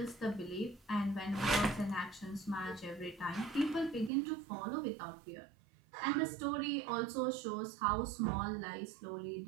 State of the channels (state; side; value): drops out; left; at 4.1 s